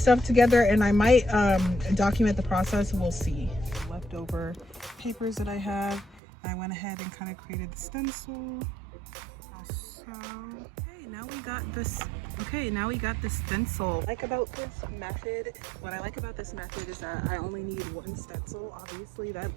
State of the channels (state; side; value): drops out; left; at 6.2 s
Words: together and I might document the process. We'll see. Leftover papers that I have. I went ahead and kind of created the stencil. So, okay, now we got this. Okay, now we got the stencil. What I like about this method is that I only need one stencil. Obviously, that